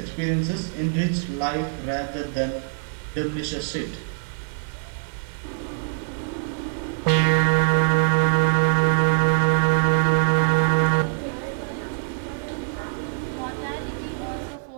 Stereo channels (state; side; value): silent; left; 63 dB below the other